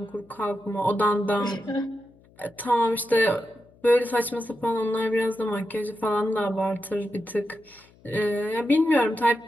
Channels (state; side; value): noise; left; hum, 29 dB below the sound